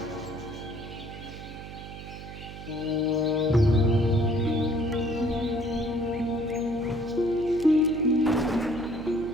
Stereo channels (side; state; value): right; noise; hum, 12 dB below the sound